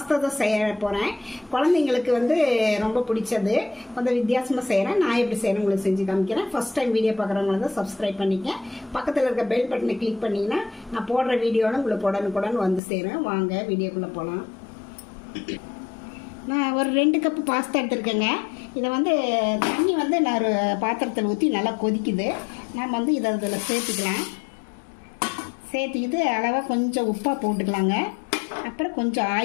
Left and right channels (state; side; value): drops out; right; at 12.8 s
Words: தான் செய்ய போகிறேன். குழந்தைங்களுக்கு வந்து ரொம்ப பிடிச்சது. கொஞ்சம் வித்தியாசமாக செய்கிறேன். நான் எப்படி செய்கிறேன் உங்களுக்கு செஞ்சு காமிக்கிறேன். ஃபர்ஸ்ட் டைம் வீடியோ பார்க்குறவங்கள தான் சப்ஸ்கிரைப் பண்ணிக்க. பக்கத்தில் இருக்க பெல் பட்டனை கிளிக் பண்ணிங்கன்னா நான் போடுற வீடியோவில் உங்களுக்கு உடனுக்குடன் வந்து சேரும். வாங்க வீடியோக்குள்ளே போகலாம். நான் ஒரு 2 கப்பு பாஸ்தா எடுத்துருக்கேங்க. இதை வந்து தண்ணி வந்து நான் ஒரு பாத்திரத்தில் ஊற்றி நல்லா கொதிக்குது. நம்ம வந்து இதை இதில் சேர்த்துக்கலாம். சேர்த்துக்கிட்டு அளவாக கொஞ்சம் உப்பாக போட்டுக்கலாங்க. அப்புறம் கொஞ்சம்